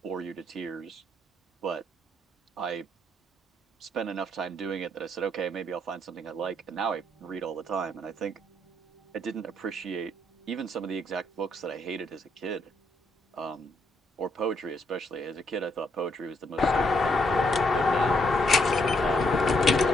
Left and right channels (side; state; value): both; normal; correlation 0.74